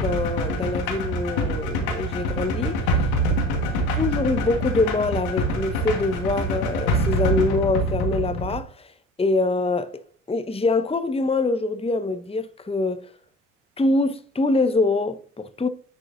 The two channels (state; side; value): normal; both; correlation 0.45